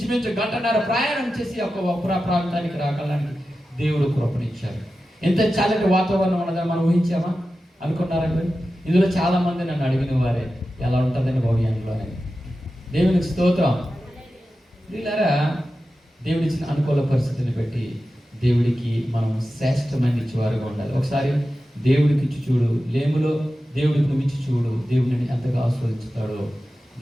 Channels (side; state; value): both; normal; correlation 0.93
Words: 1.5 గంట ప్రయాణం చేసి ఒక ప్రాంతానికి రాగలడానికి దేవుడు కృపణించారు. ఎంత చల్లటి వాతావరణం ఉన్నదని మనం ఊహించామా? అనుకున్నారా మీరు? ఇందులో చాలా మంది నన్ను అడిగిన వారే, ఎలా ఉంటుందని భవిష్యంలోనే. దేవునికి స్తోత్రం. వీళ్ళారా, దేవుడిచ్చిన అనుకూల పరిస్థితిని బట్టి దేవుడికి మనం శ్రేష్టమైన ఇచ్చేవారుగా ఉండాలి. ఒకసారి దేవుడికి ఇచ్చి చూడు, లేములో దేవుడికి నువ్వు ఇచ్చి చూడు, దేవుడిని ఎంతగా ఆస్వాదించుతాడో